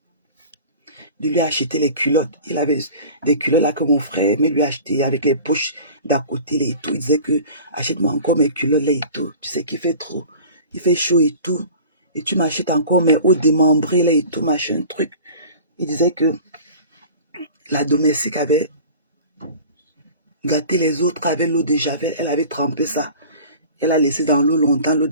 les culottes. Il avait des culottes là que mon frère aimait lui acheter avec les poches d'à côté là, et tout. Il disait que achète-moi encore mes culottes là et tout. Tu sais qu'il fait trop. Il fait chaud et tout. Et tu m'achètes encore mes hauts démembrés là et tout, machin, truc. Il disait que la domestique avait gâté les autres avec l'eau de javel. Elle avait trempé ça. Elle a laissé dans l'eau longtemps, l'eau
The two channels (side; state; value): both; inverted; correlation -0.41